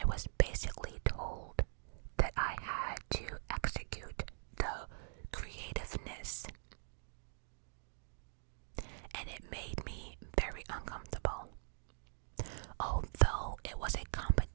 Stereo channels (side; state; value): left; silent; digital silence